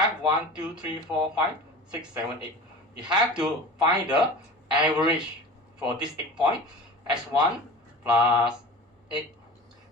1, 2, 3, 4, 5, 6, 7, 8. You have to find the average for this 8 point. x1 plus 8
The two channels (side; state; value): both; normal; correlation 0.36